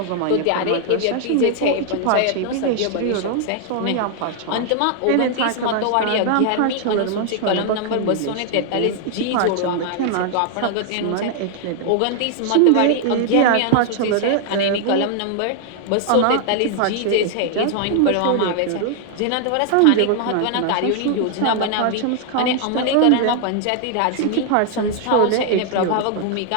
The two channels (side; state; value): both; different; correlation 0.00